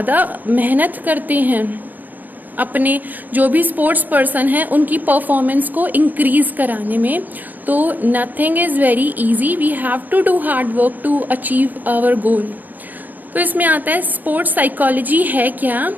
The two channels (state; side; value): late; left; 0.087 ms